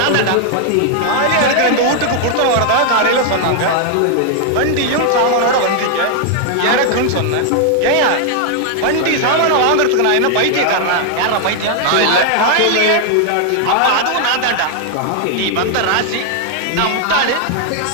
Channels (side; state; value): both; different; correlation 0.00